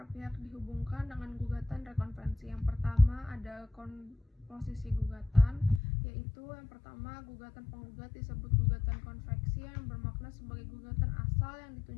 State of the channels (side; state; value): right; drops out; at 5.8 s